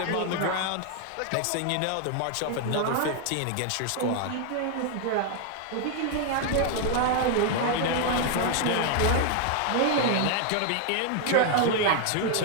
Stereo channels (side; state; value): both; different; correlation 0.00